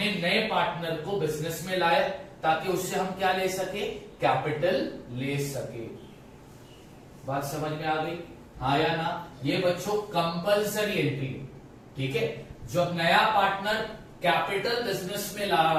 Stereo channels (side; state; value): both; identical; correlation 1.00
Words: नए पार्टनर को बिजनेस में लाया ताकि उससे हम क्या ले सके, कैपिटल ले सके। बात समझ में आ गई, हाँ या ना। ये बच्चों कंपलसरी एंट्री, ठीक है। जब नया पार्टनर कैपिटल बिजनेस में ला